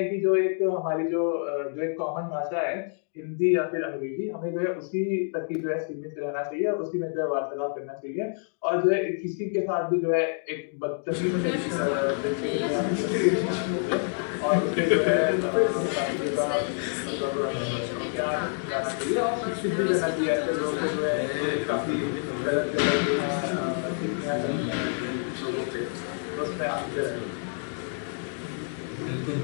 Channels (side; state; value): right; silent; 60 dB below the other